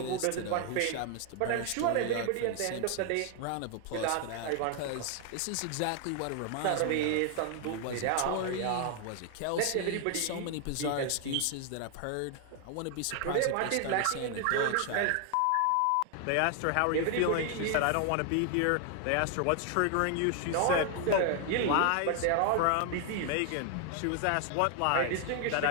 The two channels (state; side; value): different; both; correlation 0.00